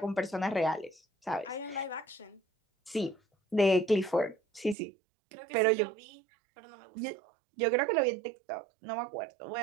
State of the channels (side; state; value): left; drops out; at 4.8 s